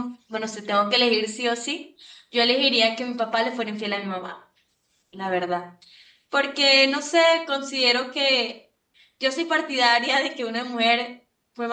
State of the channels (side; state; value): both; identical; correlation 1.00